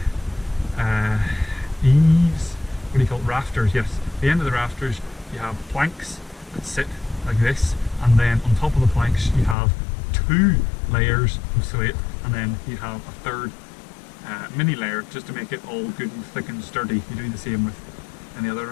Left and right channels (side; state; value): right; drops out; at 9.6 s